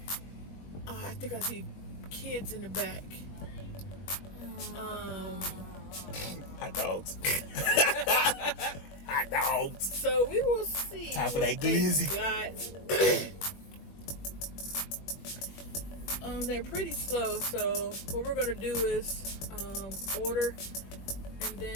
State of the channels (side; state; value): right; late; 21 ms